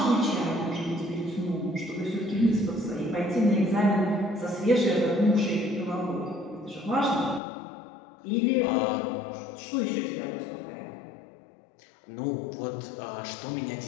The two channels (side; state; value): right; drops out; at 7.4 s